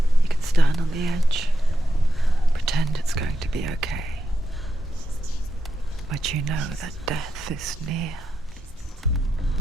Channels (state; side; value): normal; both; correlation 0.86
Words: You can stand on the edge, pretend it's going to be okay. But you know that death is near,